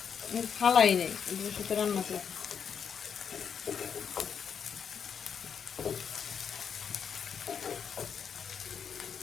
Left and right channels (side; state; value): right; quieter; 7.2 dB